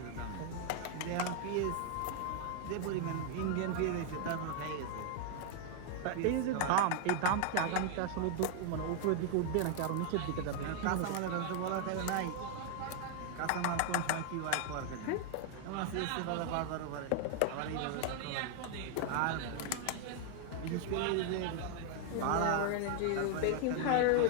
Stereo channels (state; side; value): different; both; correlation 0.00